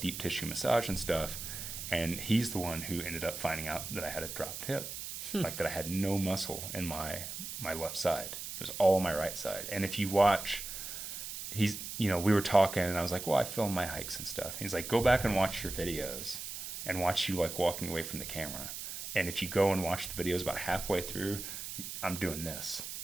deep tissue massage and stuff. And he's the one who ended up finding out that I had a dropped hip, like that I had no muscle in my left side. It was all my right side. And if you watch, we were talking, and I was like, well, I film my hikes and stuff. He's like, go back and watch your videos and watch you like walking away from the camera. And if you go and watch the videos about halfway through, I'm doing this.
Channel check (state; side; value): noise; right; hiss, 7 dB below the sound